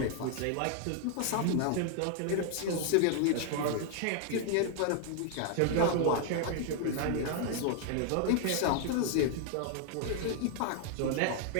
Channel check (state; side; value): different; both; correlation 0.00